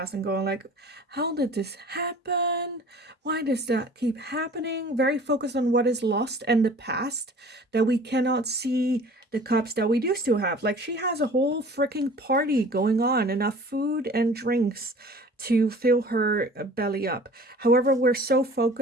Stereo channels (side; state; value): both; normal; correlation 0.46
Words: and going like, how did this happen? Why does that keep happening? Very focused on what is lost and the past, that we cannot see the cups that we do still have. Like, she has a whole freaking party going on, enough food and drinks to fill her belly up. However, we're so